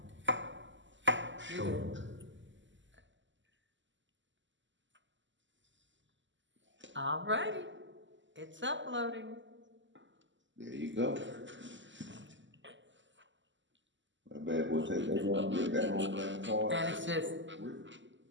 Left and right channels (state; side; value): late; left; 0.54 ms